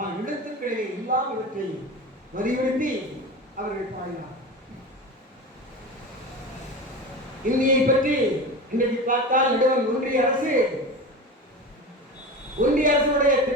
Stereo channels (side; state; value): both; normal; correlation 0.28